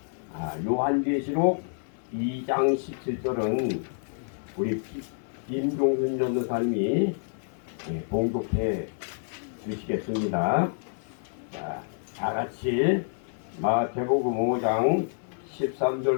요한계시록 2장 17절은 우리 김종순 전도사님이 봉독해 주시겠습니다. 다 같이 마태복음 5장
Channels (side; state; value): right; silent; 59 dB below the other